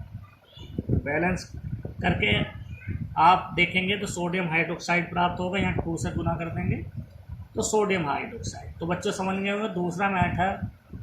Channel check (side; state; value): both; identical; correlation 1.00